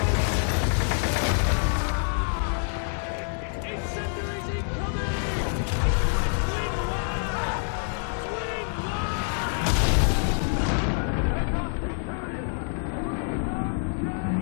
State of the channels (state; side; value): silent; right; 59 dB below the other